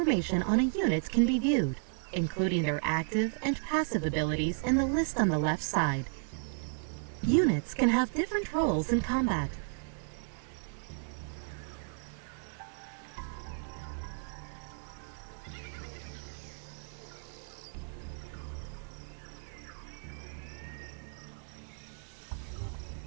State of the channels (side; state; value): left; silent; 55 dB below the other